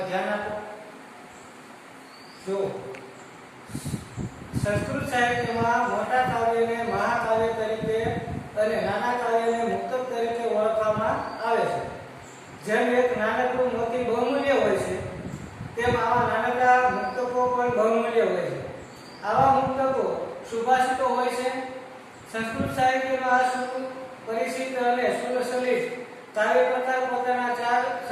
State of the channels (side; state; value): both; identical; correlation 1.00